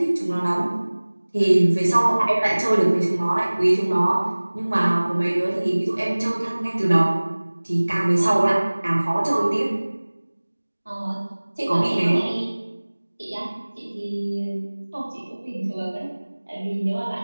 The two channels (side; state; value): both; inverted; correlation -1.00